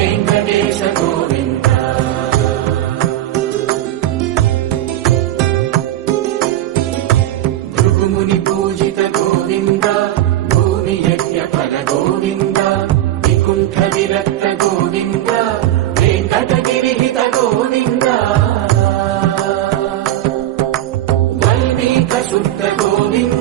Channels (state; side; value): quieter; left; 13.5 dB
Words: గోవింద భృగుముని పూజిత గోవింద భూమి యజ్ఞ ఫల గోవింద వికుంఠ విరక్త గోవింద వెంకటగిరిహిత గోవింద వల్మీక శుద్ధ